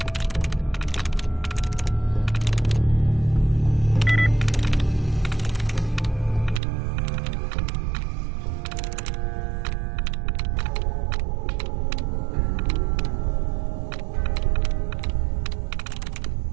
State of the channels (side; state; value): left; drops out; at 6.6 s